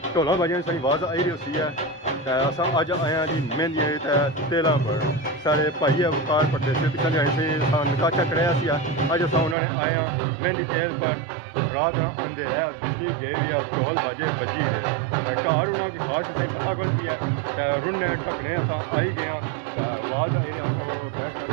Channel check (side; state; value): left; drops out; at 9.6 s